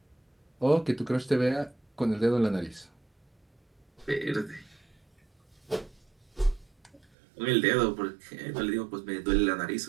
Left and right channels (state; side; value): drops out; left; at 7.1 s